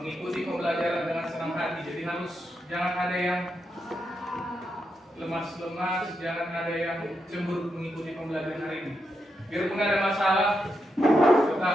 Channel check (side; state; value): both; normal; correlation 0.84